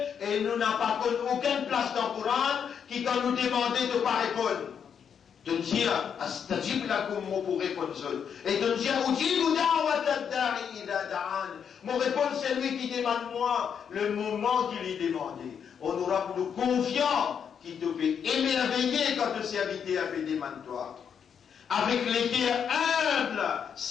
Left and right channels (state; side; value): quieter; right; 7.5 dB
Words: et nous n'avons pas aucune place dans le Coran, qui quand nous demandait de ne pas répondre. De dire, astajib lakum pour répondre seul. Et de dire, mon réponse, c'est lui qui demande moi, le moment qu'il est demandé. On aura pour nous confiants, qui te fait émerveiller quand le serviteur a fait demande toi. Avec les cœurs humbles,